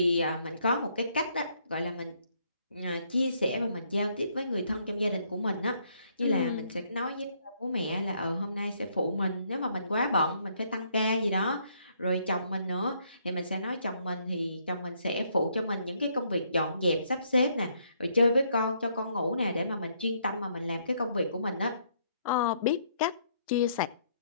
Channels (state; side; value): inverted; both; correlation -0.70